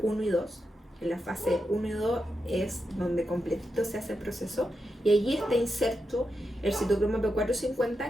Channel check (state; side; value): normal; both; correlation 0.87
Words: y 2. En la fase 1 y 2 es donde completito se hace el proceso, y allí está inserto el citocromo